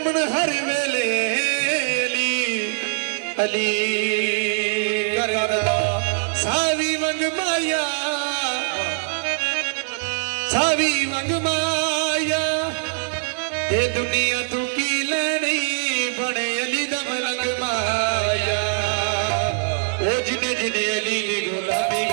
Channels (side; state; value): left; silent; 64 dB below the other